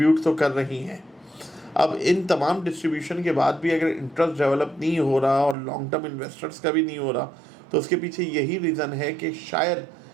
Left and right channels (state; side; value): drops out; left; at 5.6 s